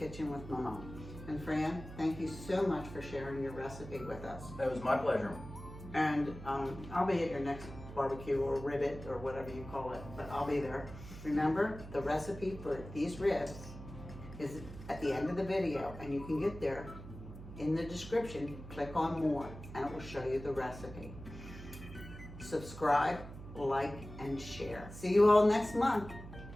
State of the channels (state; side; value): noise; right; hum, 13 dB below the sound